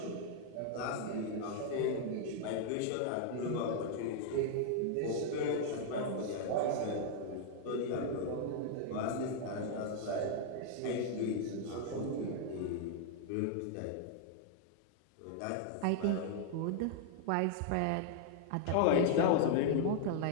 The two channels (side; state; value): both; different; correlation 0.00